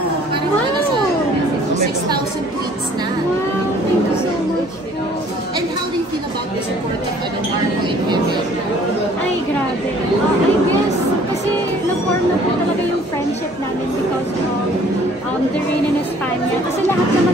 nasa 6,000 tweets na. Wow, thank you so much po. And how do you feel about the support of Marco and Kevin? Ay, grabe. I guess, kasi na-form na po talaga yung friendship namin because of The Rain in España. Kasi lahat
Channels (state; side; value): normal; both; correlation 0.56